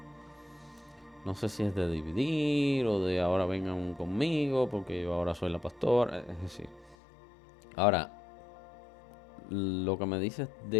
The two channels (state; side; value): drops out; right; at 7.0 s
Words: no sé si es de dividir o de ahora vengan conmigo porque yo ahora soy la pastora, es decir, Ahora, lo que me dices